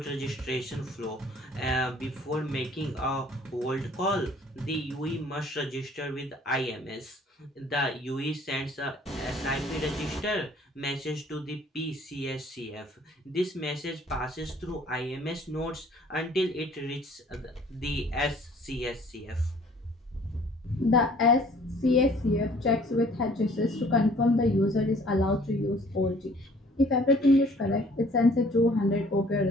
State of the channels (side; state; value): both; normal; correlation 0.55